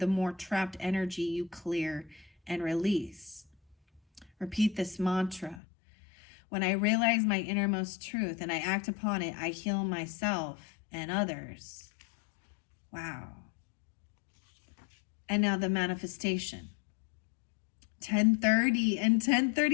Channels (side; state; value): right; drops out; at 5.6 s